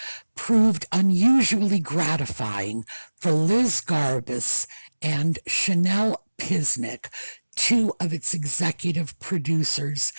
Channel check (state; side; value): inverted; both; correlation -1.00